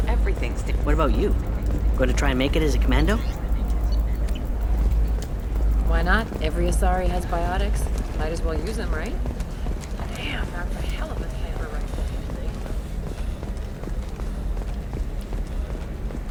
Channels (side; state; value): both; identical; correlation 1.00